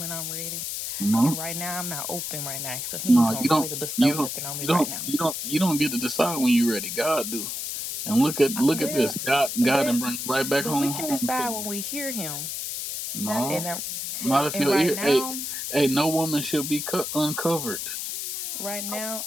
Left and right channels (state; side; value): noise; left; hiss, 5 dB below the sound